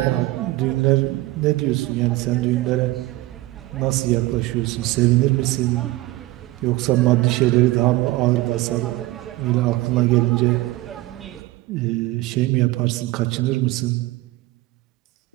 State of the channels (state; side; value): quieter; left; 18.7 dB